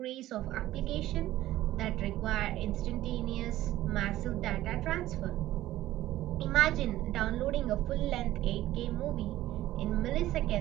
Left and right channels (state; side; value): quieter; left; 14.9 dB